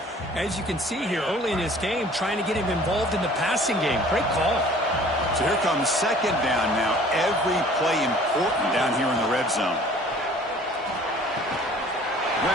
As you can see here early in this game, trying to get him involved in the passing game. Great call. So here comes second down now. Every play important down here in the red zone.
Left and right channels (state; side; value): normal; both; correlation 0.50